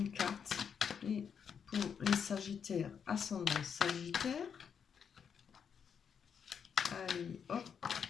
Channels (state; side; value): quieter; right; 7.2 dB